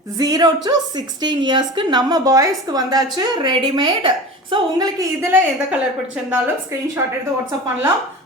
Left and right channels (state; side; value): normal; both; correlation 0.33